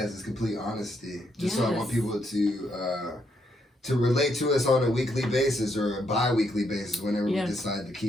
is complete honesty. So I want people to relate to us on a weekly basis or a bi-weekly basis whenever we decide to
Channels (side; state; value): both; normal; correlation 0.76